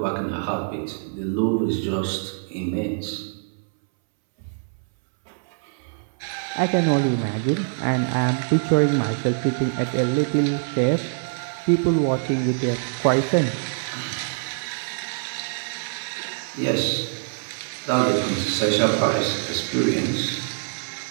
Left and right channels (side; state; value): left; silent; 62 dB below the other